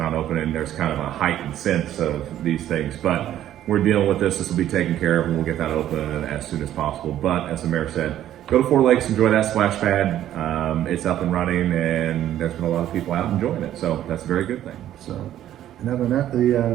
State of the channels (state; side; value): quieter; left; 12.0 dB